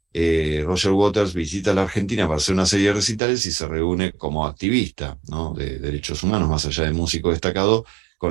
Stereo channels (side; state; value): left; drops out; at 3.2 s